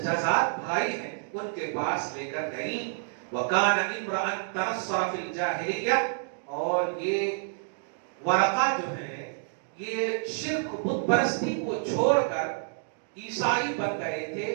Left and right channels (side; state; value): left; silent; digital silence